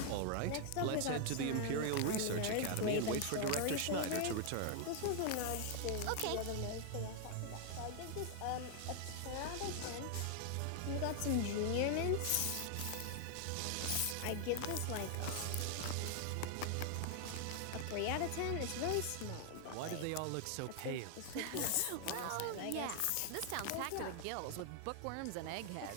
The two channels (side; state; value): both; different; correlation 0.00